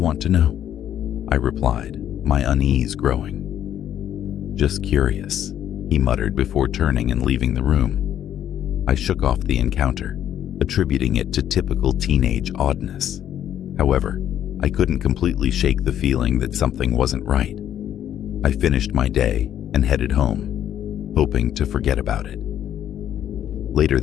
to know?" I replied, my unease growing. "Just curious," he muttered before turning and leaving the room. I shook off the encounter, attributing it to typical teenage oddness. However, I couldn't completely shake the feeling that something wasn't right. I finished my day and headed home, hoping to forget about it. Later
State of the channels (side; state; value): right; quieter; 10.6 dB